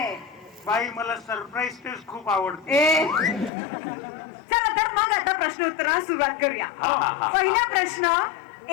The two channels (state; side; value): drops out; right; at 3.5 s